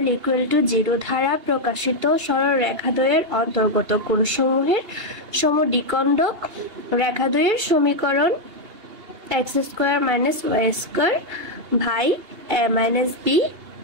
equal to 0 দ্বারা প্রকাশিত সরলরেখাদ্বয়ের অন্তর্গত কোণসমূহের সমদ্বিখণ্ডক রেখাদ্বয়ের সমীকরণ x square minus y square ভাই a minus b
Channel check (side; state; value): left; late; 2.8 ms